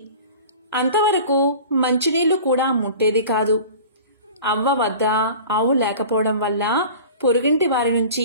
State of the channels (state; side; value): inverted; both; correlation -0.40